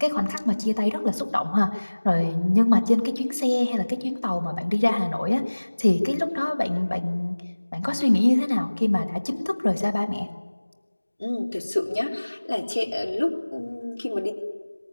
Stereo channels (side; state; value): both; inverted; correlation -1.00